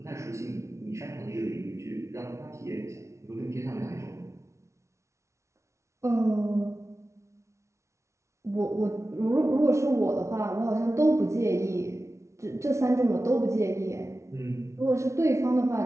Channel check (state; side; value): late; left; 0.14 ms